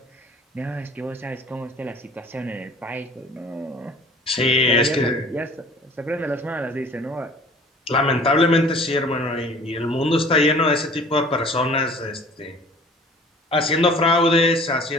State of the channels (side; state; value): both; normal; correlation 0.48